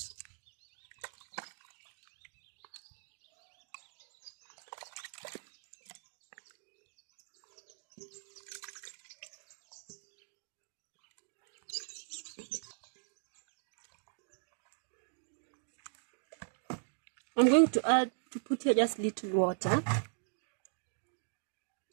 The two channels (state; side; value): silent; left; digital silence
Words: I'm going to put here just little water.